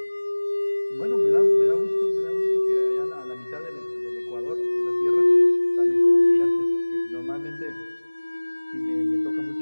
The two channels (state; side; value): inverted; both; correlation -1.00